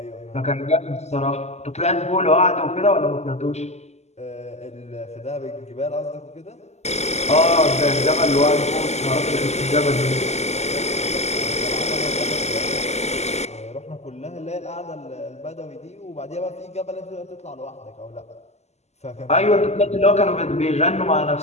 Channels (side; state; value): right; late; 0.32 ms